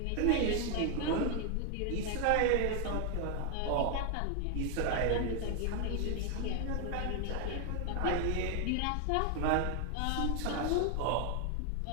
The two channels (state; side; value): different; both; correlation 0.00